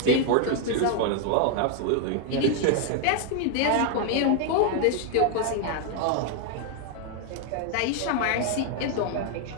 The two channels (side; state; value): both; different; correlation 0.01